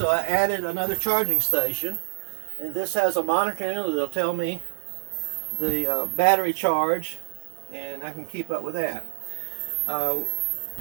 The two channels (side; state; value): left; silent; digital silence